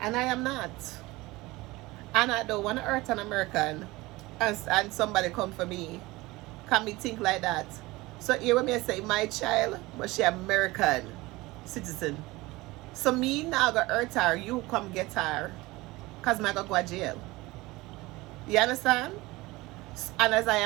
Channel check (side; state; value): left; quieter; 20.8 dB